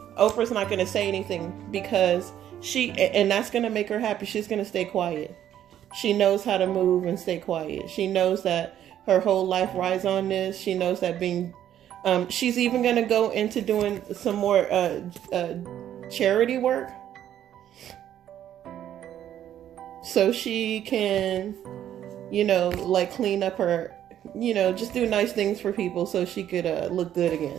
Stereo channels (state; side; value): quieter; left; 10.9 dB